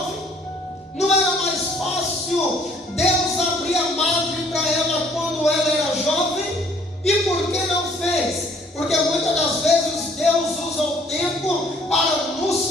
Não era mais fácil Deus abrir a madre para ela quando ela era jovem? E por que não fez? Porque muitas das vezes Deus usa o tempo para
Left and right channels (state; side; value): normal; both; correlation 0.59